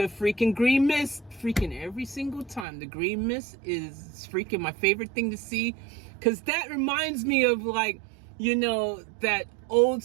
freaking Green Mist, freaking every single time. The Green Mist is freaking my favorite thing to see, because that reminds me of, like, you know, that old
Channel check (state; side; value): drops out; left; at 2.7 s